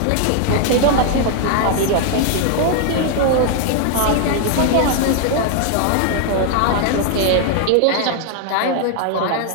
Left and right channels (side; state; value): both; different; correlation 0.00